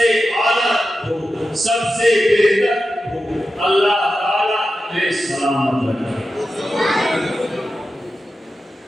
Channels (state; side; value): normal; both; correlation 0.91